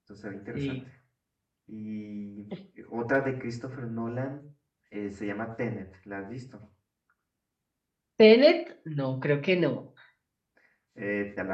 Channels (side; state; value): both; identical; correlation 1.00